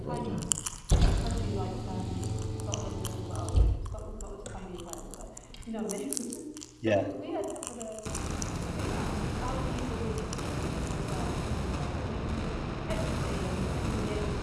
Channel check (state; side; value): identical; both; correlation 1.00